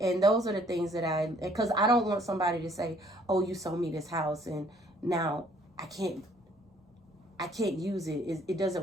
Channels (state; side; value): normal; both; correlation 0.62